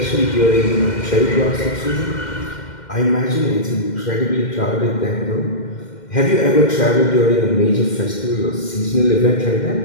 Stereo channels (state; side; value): late; right; 2.1 ms